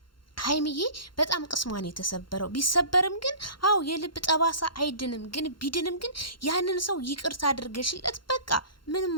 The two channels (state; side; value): late; right; 0.72 ms